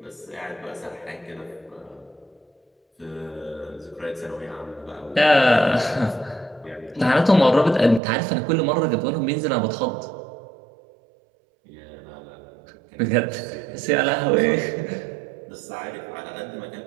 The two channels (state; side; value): drops out; left; at 8.0 s